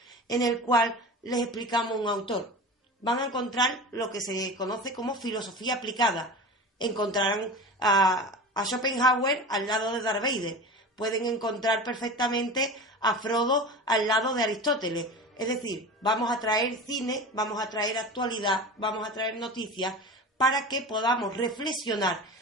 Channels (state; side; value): normal; both; correlation 0.32